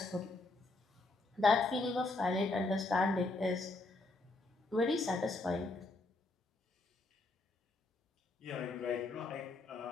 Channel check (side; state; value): right; quieter; 3.1 dB